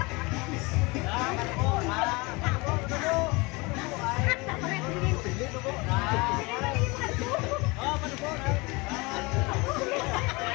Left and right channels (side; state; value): right; quieter; 25.6 dB